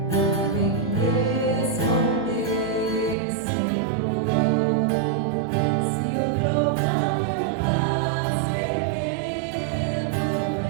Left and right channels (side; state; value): left; drops out; at 3.2 s